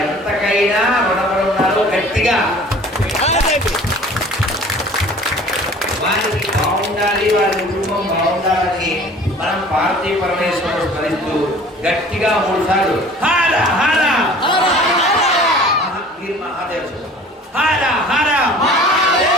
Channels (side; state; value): both; normal; correlation 0.47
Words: ఎంతకైనా రుణపడి ఉన్నారు. గట్టిగా వారికి బాగుండాలి, వారి కుటుంబం బాగుండాలని మనం పార్వతీ పరమేశ్వరుడు స్మరిస్తూ గట్టిగా 3 సార్లు హర హర మహాదేవ హర హర